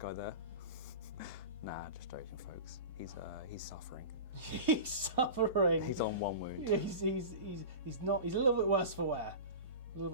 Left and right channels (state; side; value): inverted; both; correlation -0.31